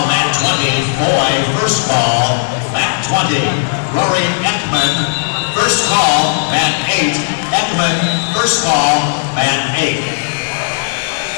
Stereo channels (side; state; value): right; silent; digital silence